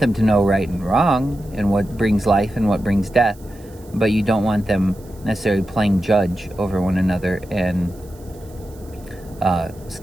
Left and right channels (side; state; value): right; noise; hiss, 26 dB below the sound